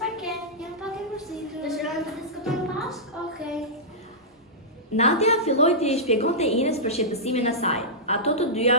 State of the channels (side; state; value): both; normal; correlation -0.12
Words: ke? Jam pak e mërzitur. Dëshiron të diskutojmë bashkë? Okej. Nadia filloi të i shpjegonte Inës për shqetësimin e saj. Ato të dyja